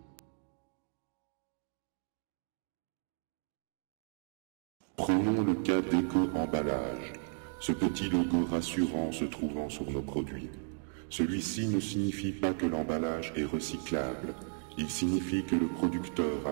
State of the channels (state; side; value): silent; left; 55 dB below the other